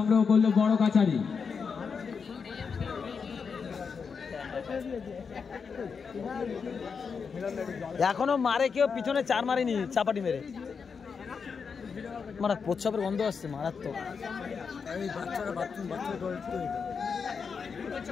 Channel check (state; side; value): quieter; right; 5.8 dB